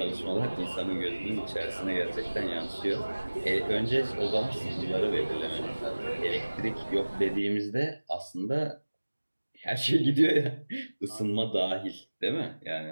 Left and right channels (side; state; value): both; inverted; correlation -1.00